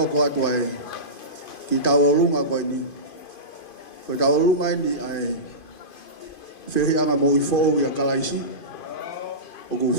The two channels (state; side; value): late; right; 2.5 ms